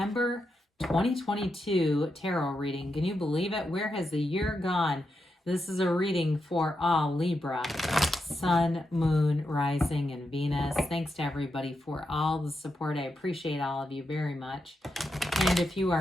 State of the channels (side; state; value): both; normal; correlation 0.85